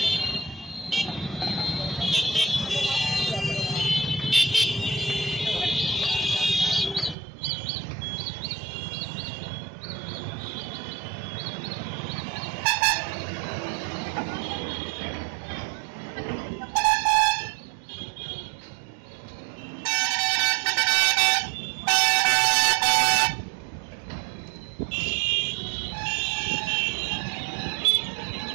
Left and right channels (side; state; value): left; drops out; at 7.2 s